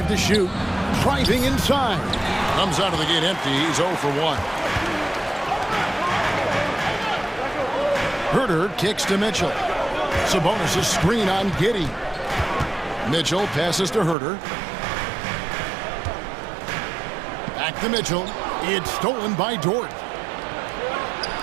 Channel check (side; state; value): left; drops out; at 14.2 s